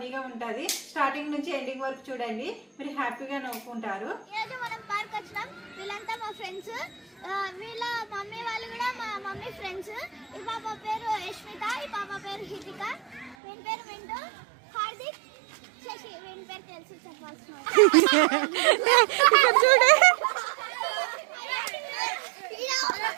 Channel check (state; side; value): drops out; left; at 13.4 s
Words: ఉంటుంది. స్టార్టింగ్ నుంచి ఎండింగ్ వరకు చూడండి, మీరు హ్యాపీగా నవ్వుకుంటారు. మనం పార్క్ వచ్చినాం. వీళ్ళంతా మా ఫ్రెండ్స్. వీళ్ళ మమ్మీ వాళ్ళు కూడా మా మమ్మీ ఫ్రెండ్స్. ఈ పాప పేరు యశ్మిత, ఈ పాప పేరు హితిక, వీని పేరు వింటూ, హార్దిక్, శశి. వీని పేరు తెలుసు చెప్పాల్సిన చూడే